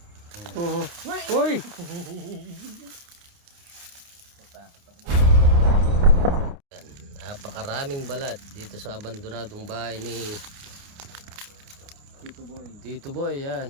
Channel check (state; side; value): late; left; 29 ms